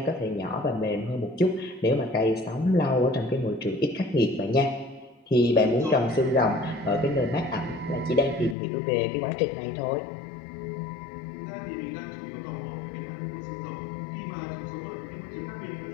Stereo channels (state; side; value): drops out; right; at 8.6 s